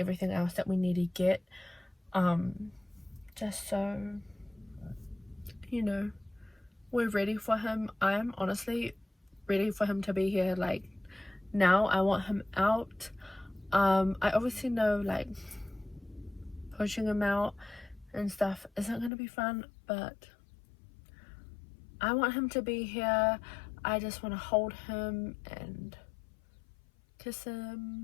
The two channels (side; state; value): right; drops out; at 19.1 s